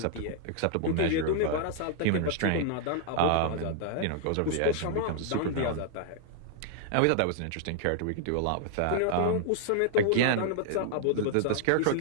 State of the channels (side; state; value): both; different; correlation -0.01